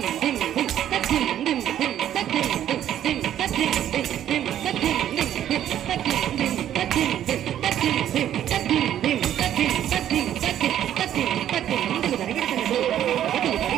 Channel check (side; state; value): left; quieter; 11.1 dB